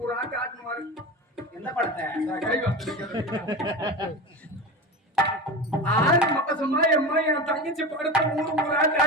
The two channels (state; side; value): normal; both; correlation 0.27